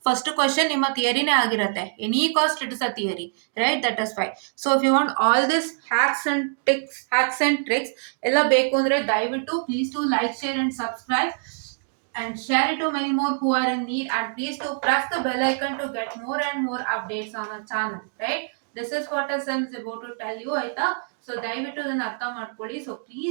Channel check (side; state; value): left; silent; digital silence